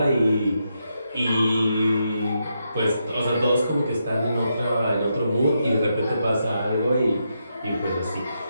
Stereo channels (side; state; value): both; inverted; correlation -0.82